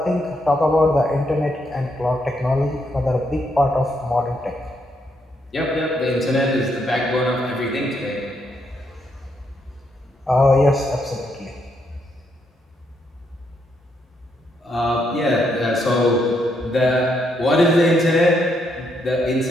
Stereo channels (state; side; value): normal; both; correlation 0.77